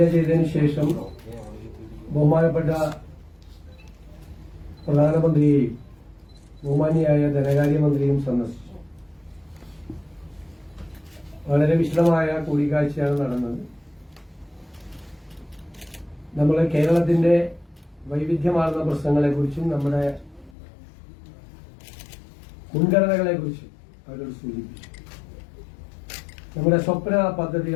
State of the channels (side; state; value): right; drops out; at 20.6 s